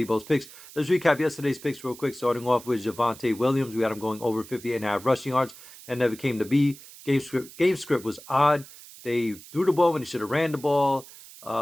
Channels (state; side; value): noise; right; hiss, 18 dB below the sound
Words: Picks. Let's recap yesterday's picks real quick, starting off with Javonte Williams. We had him going over 50.5 rushing yards. That never came to be. Game script was odd. They threw the ball when they should have ran the ball.